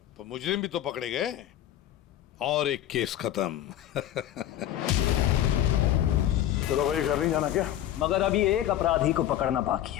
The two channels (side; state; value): right; quieter; 12.2 dB